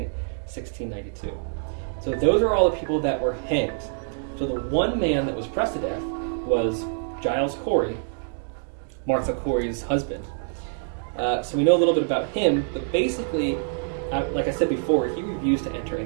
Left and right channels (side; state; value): left; silent; digital silence